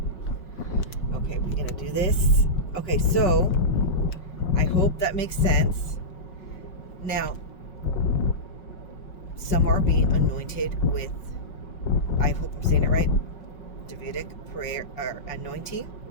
we're gonna do this. Okay, so I hope that makes sense. Now, some are being anointed with, I hope I'm saying it right, Davidic prayer or anointing,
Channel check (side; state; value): right; late; 5.4 ms